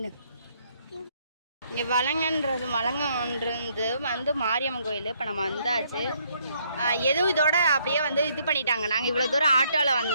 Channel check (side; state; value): both; inverted; correlation -0.69